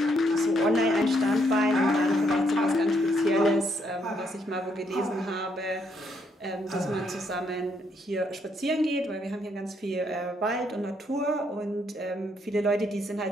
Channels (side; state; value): both; normal; correlation 0.73